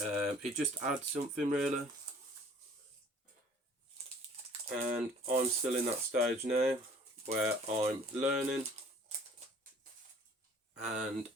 just adds something, really. And I'm still in that stage now where I'm learning and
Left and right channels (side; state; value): both; normal; correlation 0.53